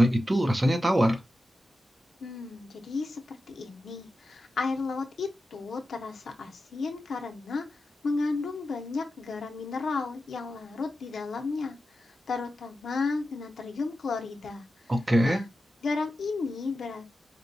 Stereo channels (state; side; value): normal; both; correlation 0.91